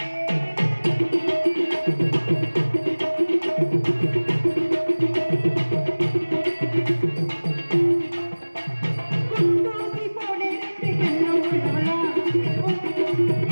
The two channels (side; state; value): both; inverted; correlation -1.00